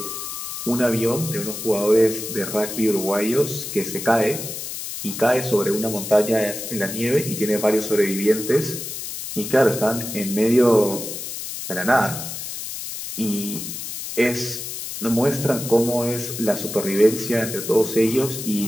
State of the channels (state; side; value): noise; left; hiss, 7 dB below the sound